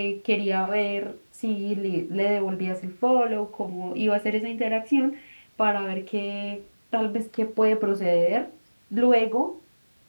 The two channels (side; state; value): both; inverted; correlation -1.00